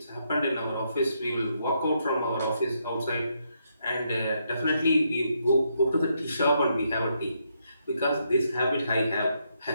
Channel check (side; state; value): both; inverted; correlation -0.77